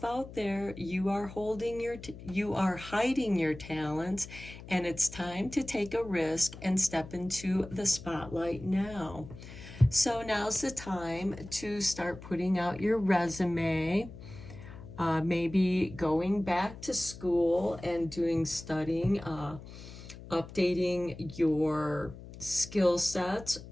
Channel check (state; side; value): noise; left; hum, 15 dB below the sound